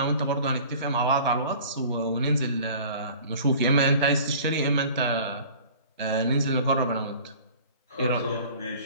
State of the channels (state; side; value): inverted; both; correlation -0.46